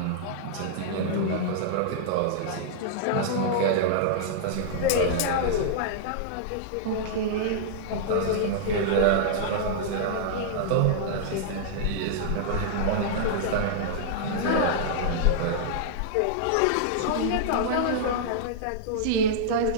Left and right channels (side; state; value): both; different; correlation -0.02